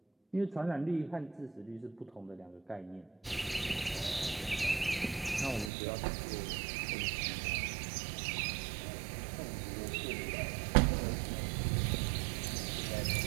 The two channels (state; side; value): drops out; left; at 5.7 s